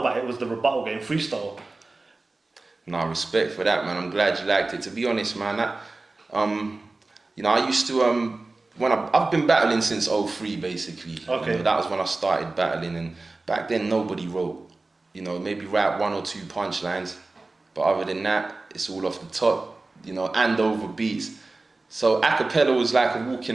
it was the rebuttal game, freestyle. No, respect for that, man. I'm glad you liked it. To be honest, man, I used to I've been battling since '03 basically. Okay. That was when I started battling, and back then nobody wrote. Maybe rap 1 or 2 punchlines, but other than that, it's all off the top, and over beats. So acapella was like a walk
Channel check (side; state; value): left; quieter; 3.3 dB